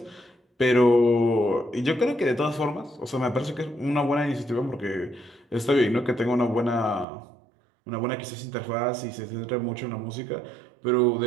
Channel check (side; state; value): left; drops out; at 7.1 s